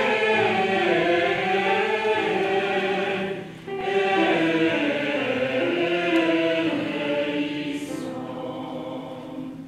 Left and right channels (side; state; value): both; identical; correlation 1.00